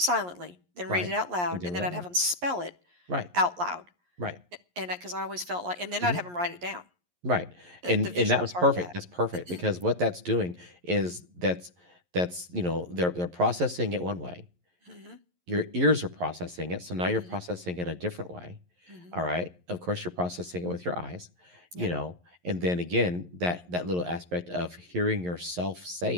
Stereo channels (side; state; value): left; late; 11 ms